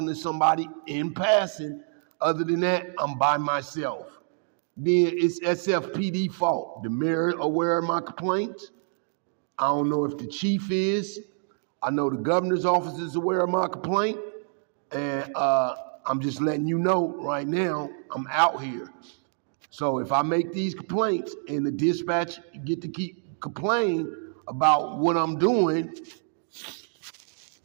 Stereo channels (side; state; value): left; silent; 60 dB below the other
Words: to somebody in passing. Other than that, I'm by myself. Then it's SFPD fault. The mayor aware of my complaints. I don't know if the chief is. I know the governor's office is aware of my complaint. And I'm just letting you know right now, I'm out here. So if I make these complaints and the dispatch get to keep complaining about what I'm doing,